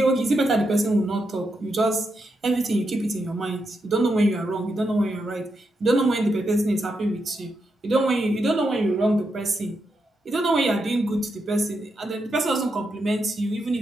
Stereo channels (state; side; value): normal; both; correlation 0.84